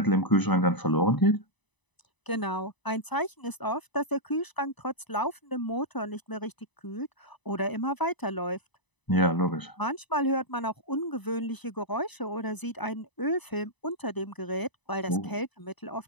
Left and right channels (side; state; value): right; late; 1.0 ms